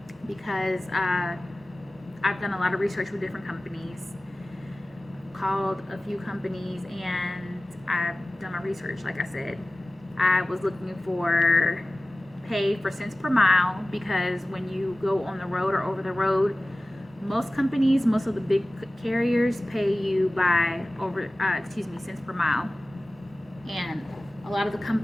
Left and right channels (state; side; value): normal; both; correlation 0.97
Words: because I've done a lot of research with different companies, called a few companies, and I've done my research. Like I said, I was looking for pay for cents per mile because when you go on the road or over the road, most companies, most of the big carriers pay you by cents per mile, and a lot of the